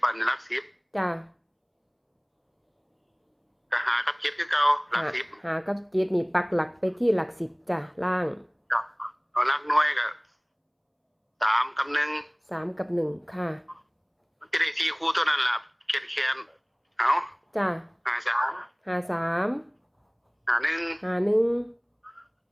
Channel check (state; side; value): identical; both; correlation 1.00